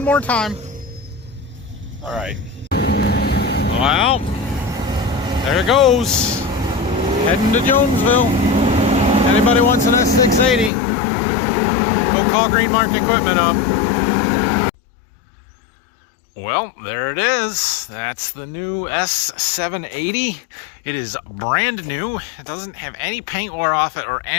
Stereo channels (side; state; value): right; drops out; at 10.7 s